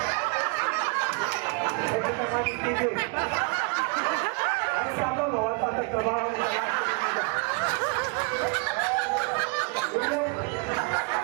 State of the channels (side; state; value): left; quieter; 31.8 dB